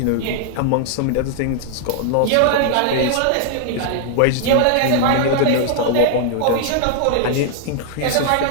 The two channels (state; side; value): different; both; correlation -0.01